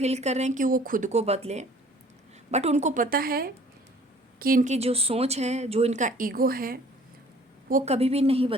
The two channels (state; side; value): normal; both; correlation 0.53